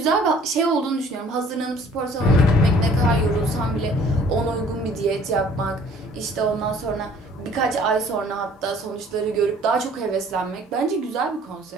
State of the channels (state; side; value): normal; both; correlation 0.54